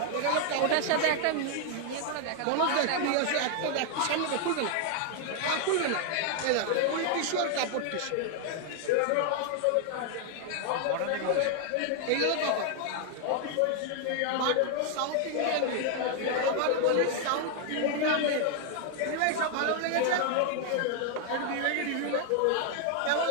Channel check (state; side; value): different; both; correlation 0.00